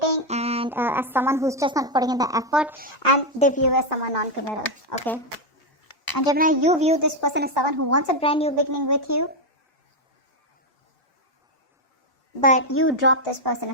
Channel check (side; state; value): both; normal; correlation 0.04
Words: and as someone who's just not putting in the effort, and they view you as someone non-committal, okay? And Gemini, you view this person as someone who wants a brand new beginning with you, but you drop this person,